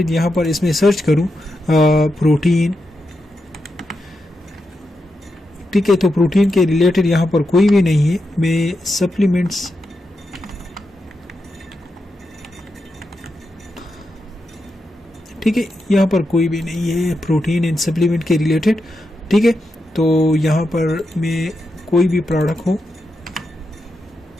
यहाँ पर इसमें सर्च करूँ प्रोटीन। ठीक है, तो प्रोटीन के रिलेटेड यहाँ पर कोई भी नहीं है, मैं सप्लीमेंट्स ठीक है, यहाँ पर कोई भी नहीं है प्रोटीन एंड सप्लीमेंट के रिलेटेड। ठीक है, तो यहाँ पर मैं कोई भी प्रोडक्ट हो,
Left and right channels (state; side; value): normal; both; correlation 0.87